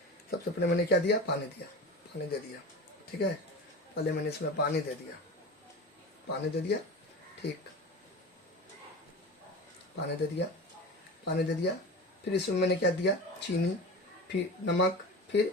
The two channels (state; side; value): normal; both; correlation 0.31